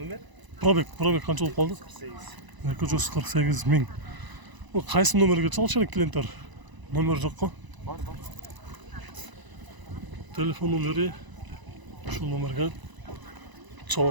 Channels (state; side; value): late; left; 1.0 ms